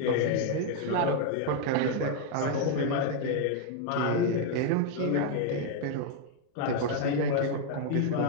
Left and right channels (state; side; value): different; both; correlation 0.00